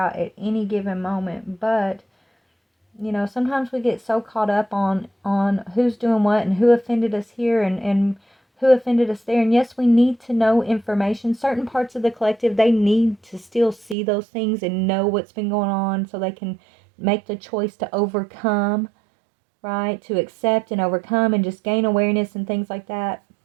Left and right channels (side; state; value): left; drops out; at 14.0 s